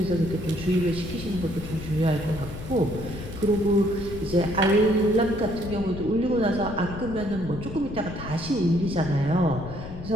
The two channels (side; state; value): left; noise; rumble, 11 dB below the sound